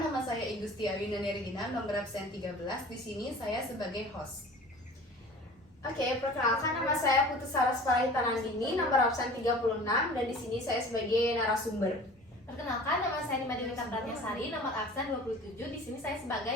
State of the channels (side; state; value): both; normal; correlation 0.43